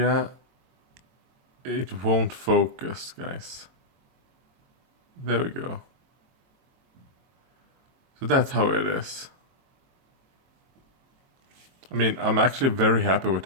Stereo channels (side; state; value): left; late; 22 ms